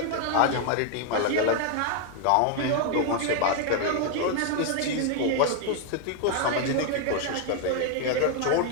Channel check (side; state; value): both; different; correlation 0.00